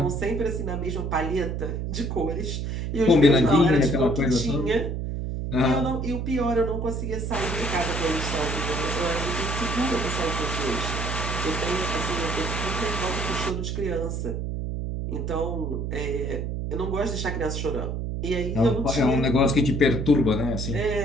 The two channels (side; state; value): right; noise; hum, 3 dB below the sound